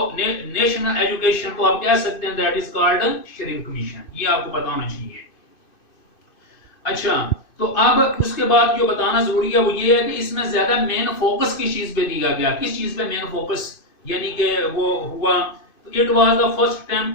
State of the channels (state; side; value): late; right; 2.5 ms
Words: नेशनल एजुकेशन तो आप कह सकते हैं that is called Sharif commission. ये आपको पता होना चाहिए। अच्छा, तो अब उसके बाद जो बताना जरूरी है वो ये है कि इसमें ज्यादा मेन फोकस किस चीज पे दिया गया, किस चीज पे मेन फोकस यानी कि वो हुआ। It was the first attempt